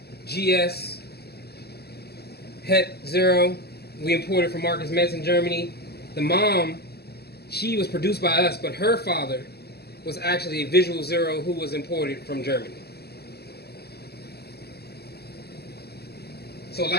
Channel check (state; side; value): late; right; 0.46 ms